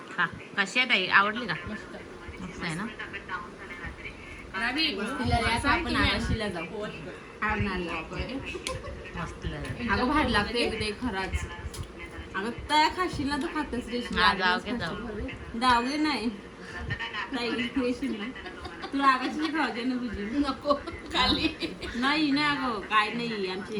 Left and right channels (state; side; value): identical; both; correlation 1.00